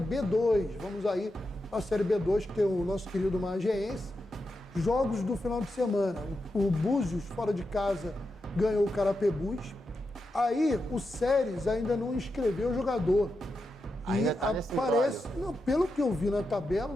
vamos aí para a Série B2, que tem o nosso querido Magiense. Jogos do final de semana, o Búzios, fora de casa, ganhou o Carapebus. Aí o Séries ainda não inscreveu o jogador. Ainda e tá nesse aparece, não, pelo que eu vi na tabela,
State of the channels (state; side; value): normal; both; correlation 0.88